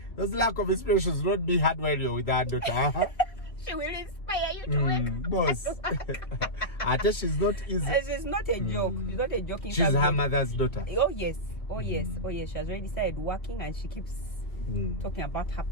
Those lack of inspirations will not be hard when you're with that daughter. She will inspire you to work. Boss. She's not easy. She's not a joke. She's not a joke. She's her mother's daughter. Oh yes. She has already started working and she keeps talking about her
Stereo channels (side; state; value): right; late; 2.4 ms